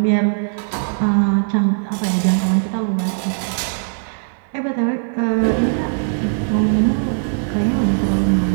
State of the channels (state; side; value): silent; left; 60 dB below the other